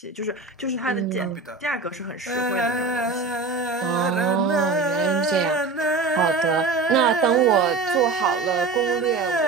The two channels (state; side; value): quieter; left; 4.1 dB